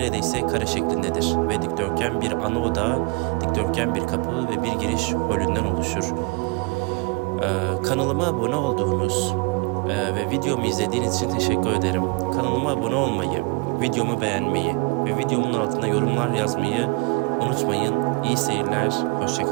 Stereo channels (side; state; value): left; quieter; 27.7 dB